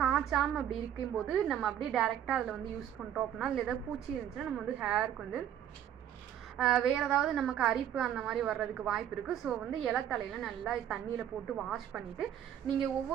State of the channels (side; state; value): left; quieter; 10.3 dB